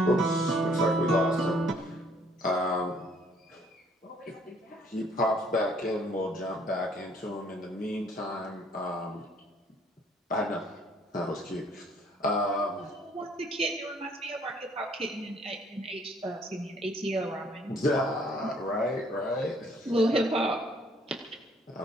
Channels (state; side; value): normal; both; correlation 0.62